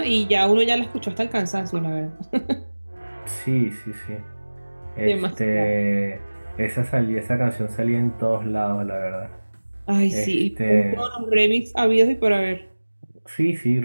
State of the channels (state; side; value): inverted; both; correlation -1.00